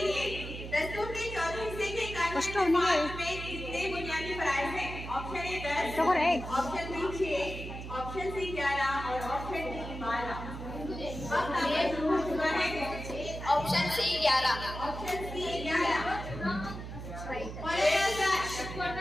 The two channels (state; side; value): noise; right; hum, 9 dB below the sound